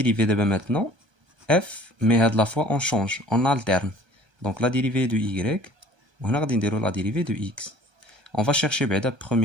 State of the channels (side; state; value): left; late; 1.3 ms